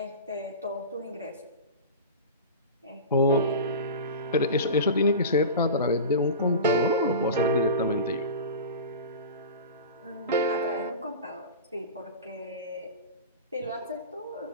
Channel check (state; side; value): inverted; both; correlation -0.31